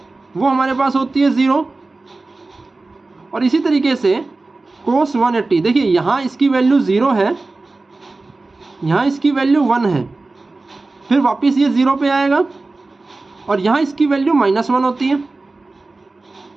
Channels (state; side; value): quieter; left; 3.4 dB